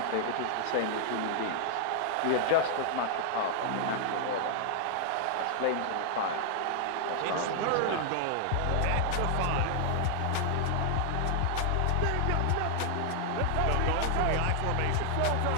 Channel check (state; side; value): different; both; correlation 0.00